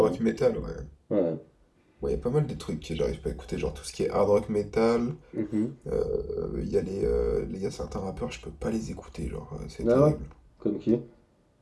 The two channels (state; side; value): identical; both; correlation 1.00